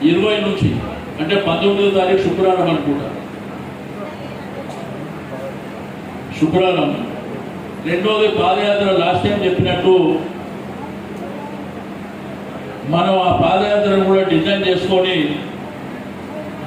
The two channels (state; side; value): identical; both; correlation 1.00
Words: 20 నుంచి అంటే 19వ తారీఖు శుక్రవారం అనుకుంటా, శుక్రవారం. రెండోది పాదయాత్ర లాస్ట్ టైం చెప్పినట్టు మనం ఆ పాదయాత్రను కూడా డిజైన్ చేసుకొని